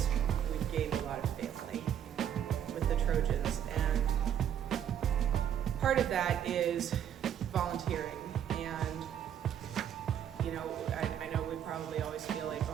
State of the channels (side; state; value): left; quieter; 9.5 dB